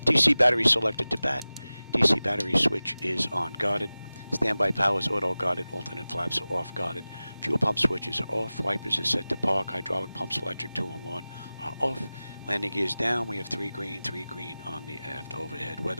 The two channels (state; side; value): inverted; both; correlation -0.97